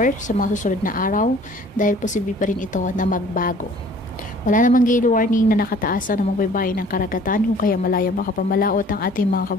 sa mga susunod na araw dahil posible pa rin ito na magbago. Wala namang gale warning na nakataasa ng mga baybay ng karagatan kung kaya malaya makapamalaot ang ating mga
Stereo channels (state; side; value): normal; both; correlation 0.52